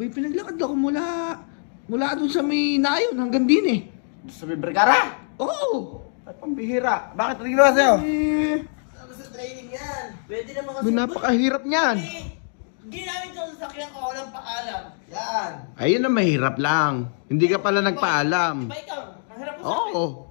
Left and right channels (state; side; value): silent; right; digital silence